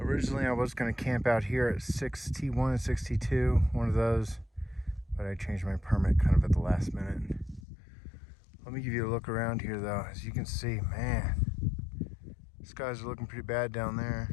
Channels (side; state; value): right; drops out; at 7.6 s